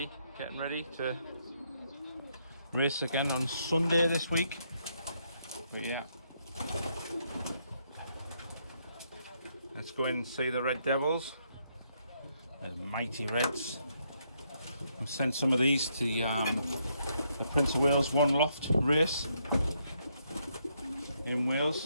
getting ready to race again on Sunday this week. But yeah, let's go in and see the Red Devils, the mighty Reds. I sent some of these to the Prince of Wales One Loft race in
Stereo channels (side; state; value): both; inverted; correlation -0.75